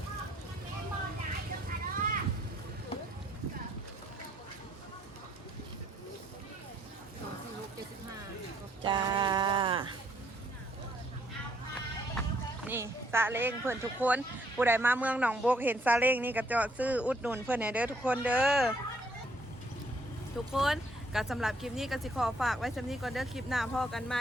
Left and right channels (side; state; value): both; normal; correlation 0.68